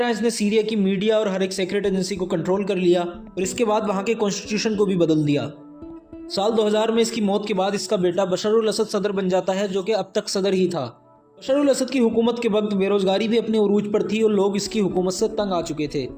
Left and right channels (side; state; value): both; identical; correlation 1.00